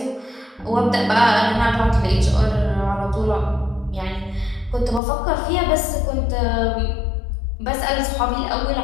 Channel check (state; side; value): drops out; right; at 5.0 s